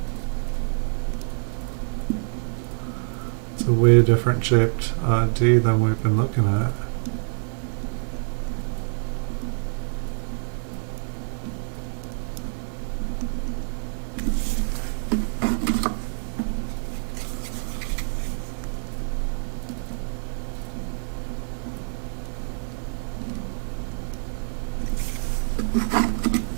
It's a way different shaped D than we've been looking at.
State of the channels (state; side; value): silent; left; digital silence